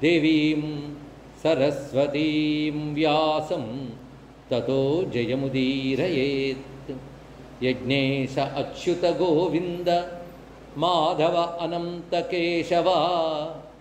देवीं सरस्वतीं व्यासं ततो जयमुदीरयेत्। यज्ञेश अच्युत गोविन्द माधव अनंत केशव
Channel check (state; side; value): identical; both; correlation 1.00